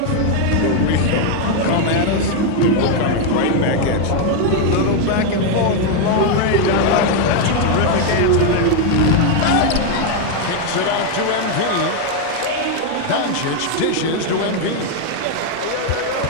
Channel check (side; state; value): both; different; correlation 0.01